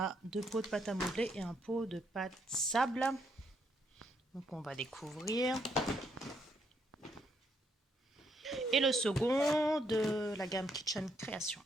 2 pots de pâte à modeler et un pot de pâte sable. Donc on va découvrir. Et le second de la gamme Kitchen Création.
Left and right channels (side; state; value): both; normal; correlation 0.74